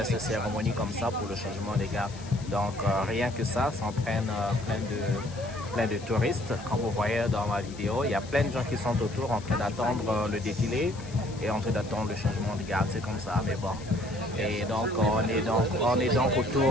de cérémonie comme ça pour le changement des gardes. Donc rien que ça entraîne plein de touristes. Comme vous voyez dans ma vidéo, il y a plein de gens qui sont autour en train d'attendre le défilé et en train d'attendre le changement de garde, c'est comme ça, mais bon. Et donc on est donc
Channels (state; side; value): noise; left; hiss, 19 dB below the sound